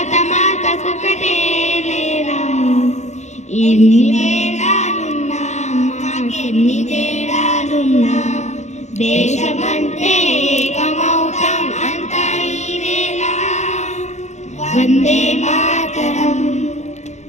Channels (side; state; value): right; late; 0.34 ms